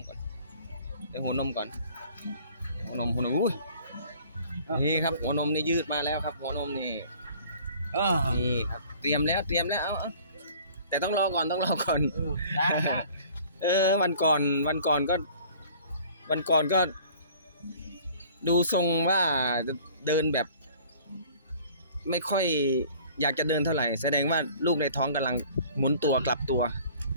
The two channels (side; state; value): both; inverted; correlation -0.51